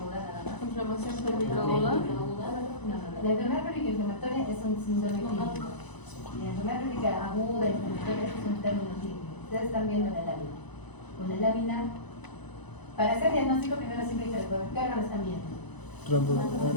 nada más. Inflamación pélvica aguda. No. La enfermedad pélvica inflamatoria es un síndrome clínico. La enfermedad pélvica aguda inflamatoria es un término clínico. Ustedes están viendo la lámina. Con la lámina, para hacer diagnóstico, primero siempre hay que recordar qué órgano están viendo.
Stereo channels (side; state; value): right; late; 1.0 ms